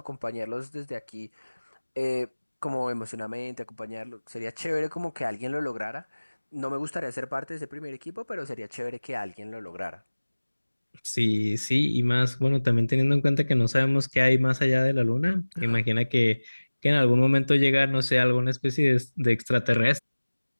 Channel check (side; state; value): both; inverted; correlation -1.00